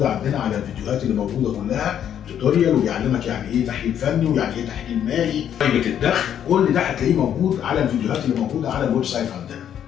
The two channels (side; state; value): right; quieter; 9.6 dB